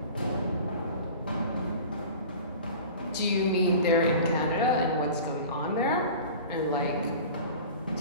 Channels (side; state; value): both; inverted; correlation -0.39